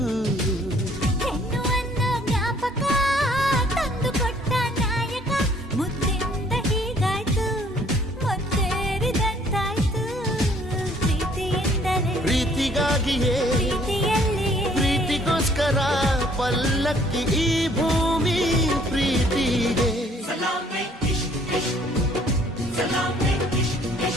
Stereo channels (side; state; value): both; normal; correlation 0.60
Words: ಹೆಣ್ಣು ಅನ್ನೋ ಜ್ಞಾಪಕ ತಂದು ಕೊಟ್ಟ ನಾಯಕ ಮುದ್ದಿಂದ ಹೀಗಾಯ್ತು ಮುತ್ತೇರಿದಂತಾಯ್ತು ಪ್ರೀತಿಯಿಂದಲೇ ಪ್ರೀತಿಗಾಗಿಯೇ ಪ್ರೀತಿಯಲ್ಲಿಯೇ ಪ್ರೀತಿಗೋಸ್ಕರ ಪಲ್ಲಕ್ಕಿ ಈ ಭೂಮಿ ಪ್ರೀತಿಗೆ